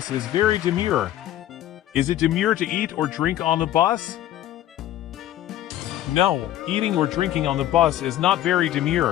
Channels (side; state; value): right; quieter; 13.1 dB